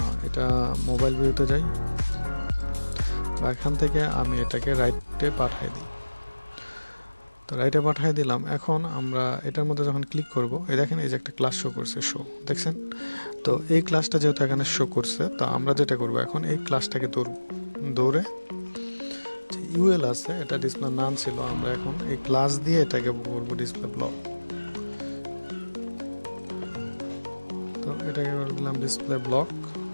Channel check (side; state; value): both; inverted; correlation -1.00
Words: এটা মোবাইল ভিউতে যাই, বা এখান থেকে আমি এটাকে রাইটে পাঠাই দিই। তো রাইটে পাঠিয়ে দিলাম। এখন আমরা এটার মধ্যে যখন ক্লিক করব, এই দেখেন এই যে একটা ক্লাস শো করছে, শো, দেখছেন? তো এই ক্লাসটা যেহেতু এখানে শো করছে, তো আমরা যেটা করব, এখন এই ক্লাসটাকে দৌড়ে যে ইউএল আছে, এটা ডিসপ্লে নান ছিল, আমরা এখন এই ক্লাস দিয়ে এটাকে করব ডিসপ্লে ব্লক। তো এটাকে করে দিলাম ডিসপ্লে ব্লক।